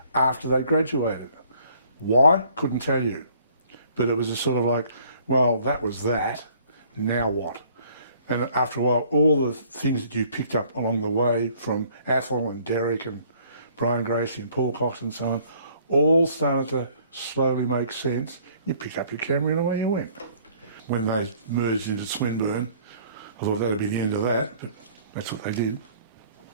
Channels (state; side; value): inverted; both; correlation -0.58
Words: after they graduated. Why? Couldn't tell you. But it was a sort of like, well, that was that, now what? And after a while, all the things that you picked up along the way from Athol and Derek and Brian Gracie and Paul Cox and so on, all started to slowly make sense. You picked up your camera and away you went. When they merged into Swinburne, I thought that'd be the end of that, but that's what they did.